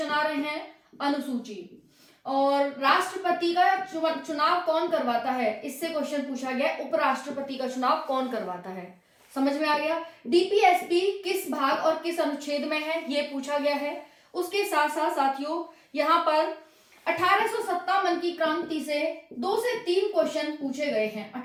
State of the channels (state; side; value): identical; both; correlation 1.00